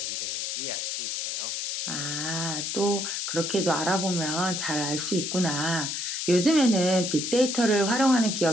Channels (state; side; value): noise; left; hiss, 2 dB below the sound